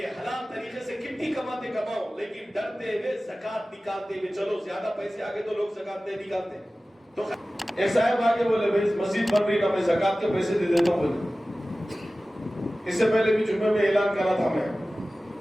ہے، حلال طریقے سے کتنی کماتے کماؤ، لیکن ڈرتے ہوئے زکات نکالتے ہوئے چلو. زیادہ پیسے آگے تو لوگ زکات نہیں نکالتے. تو ایک صاحب آگے بولے بھائی مسجد بن رہی نا، میں زکات کے پیسے دے دیتا ہوں. بولے اس سے پہلے بھی جمعے میں اعلان کرا تھا میں،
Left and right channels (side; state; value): both; normal; correlation 0.97